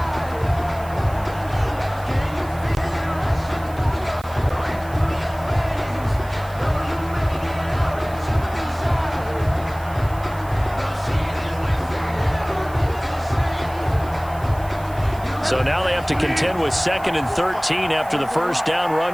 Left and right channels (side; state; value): right; noise; hiss, 21 dB below the sound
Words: So now they have to contend with 2nd and 13 after the first down